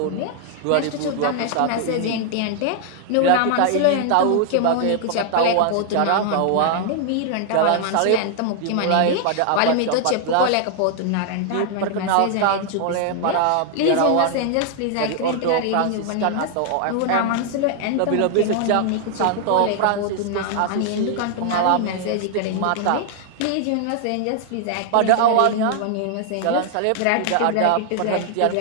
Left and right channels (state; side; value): different; both; correlation 0.00